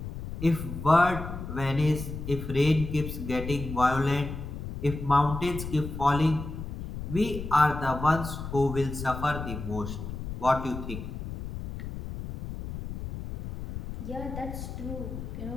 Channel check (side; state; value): left; noise; rumble, 8 dB below the sound